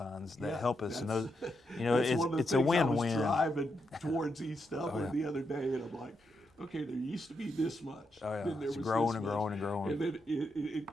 that help us. And those, you know, it's a win-win. I was driving towards East Dublin the other day, and I'm like, okay, there used to be this much. Oh yeah, then there it's was growing this and much. growing and growing. And then I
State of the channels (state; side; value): normal; both; correlation 0.83